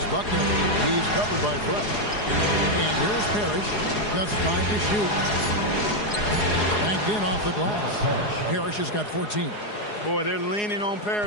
Buckner. He's covered by Fresh. And here's Parrish. Just 5 to shoot. Banked in off the glass. Parrish has got 14. Boy, they're leaning on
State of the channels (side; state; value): right; late; 4.8 ms